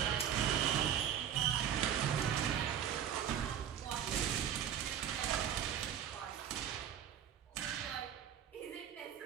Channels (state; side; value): quieter; left; 9.4 dB